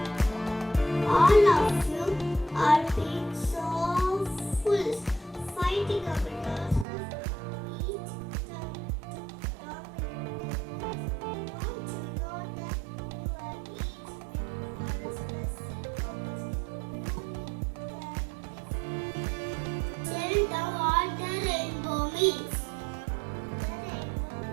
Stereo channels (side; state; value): left; drops out; at 6.9 s